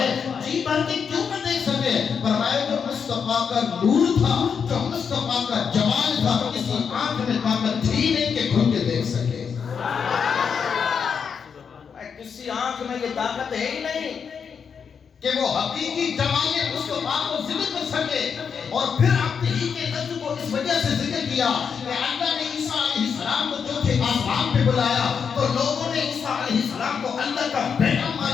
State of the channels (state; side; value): quieter; right; 6.6 dB